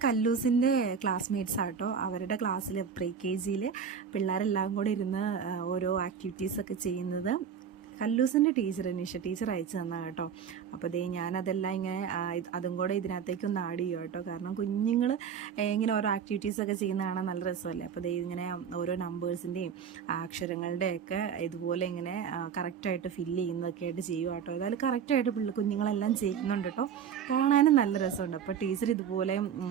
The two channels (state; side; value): quieter; left; 7.4 dB